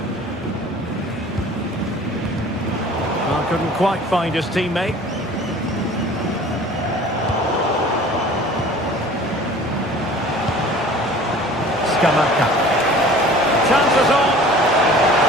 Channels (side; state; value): both; normal; correlation 0.46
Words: Well, couldn't quite find his teammate. Scamacca. Chances on.